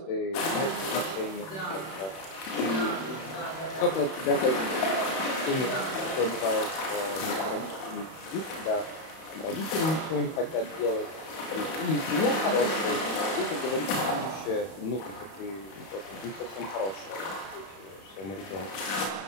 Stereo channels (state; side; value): late; right; 31 ms